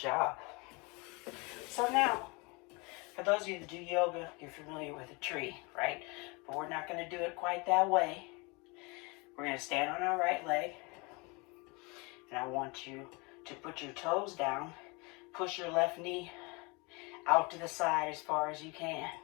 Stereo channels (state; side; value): quieter; right; 28.0 dB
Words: So now, for those of you that do yoga, you're familiar with a tree, right? But we're not going to do it quite that way. We're going to stand on our right leg. And I want you to put your toes down. Push your left knee out to the side as far as you can.